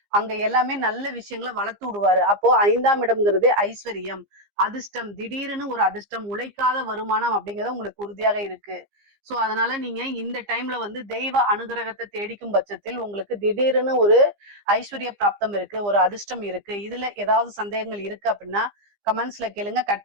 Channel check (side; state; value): left; late; 15 ms